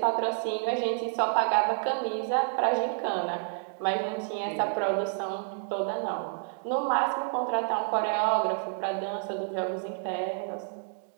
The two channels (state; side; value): silent; left; 58 dB below the other